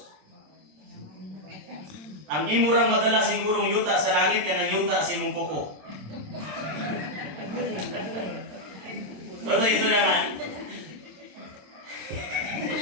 Ang imo rang madala siguro yuta sa langit kanang yuta sa imong kuko. Ano ito naman?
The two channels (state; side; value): late; left; 27 ms